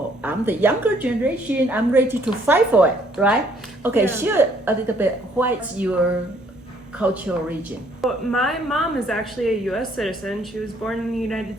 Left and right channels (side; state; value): both; normal; correlation 0.64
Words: I'm the younger generation, I'm ready to fight for it, right? Okay, Yeah. Share a little bit, what's your cultural origin? My mom is actually a U.S. citizen. She was born in the